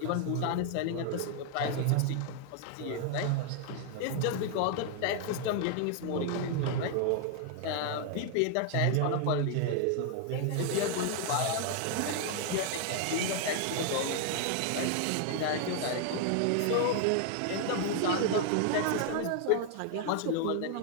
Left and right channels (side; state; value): both; different; correlation 0.00